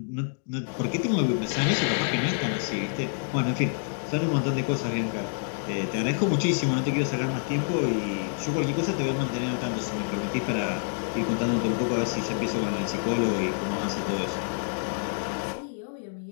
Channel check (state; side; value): silent; right; digital silence